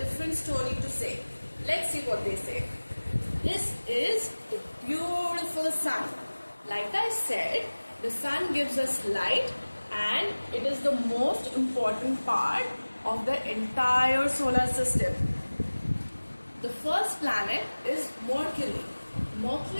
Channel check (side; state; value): both; inverted; correlation -1.00